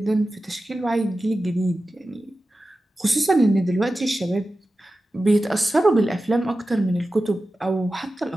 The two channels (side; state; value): both; normal; correlation 0.94